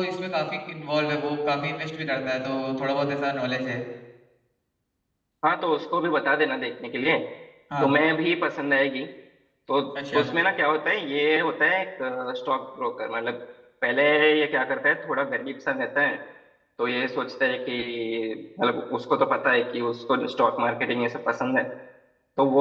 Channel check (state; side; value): identical; both; correlation 1.00